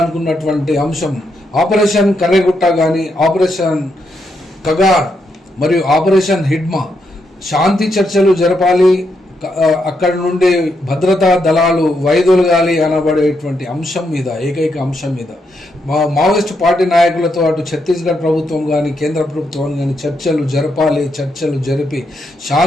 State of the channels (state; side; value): normal; both; correlation 0.80